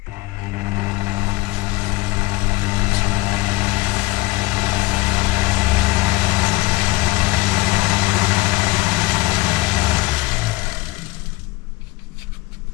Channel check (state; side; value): quieter; right; 20.6 dB